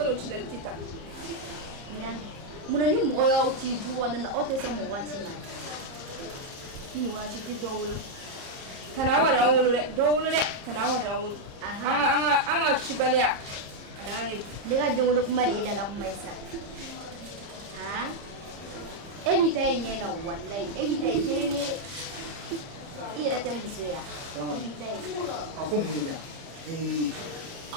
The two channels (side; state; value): left; late; 30 ms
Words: chila tita. Nyame. Muna ni mo ya uti du wanda na ote so mo wachi ma. Ni wachi ki dowulo. Tanawa da wolo de dowulo de tanawa da wolo. Aha. Anga chibaliya. Lega dowulo kuma de da la kuma isa. Ha? Evita yena wallahi. Evita kirene ira ta musuya. Evita. Aku mu de.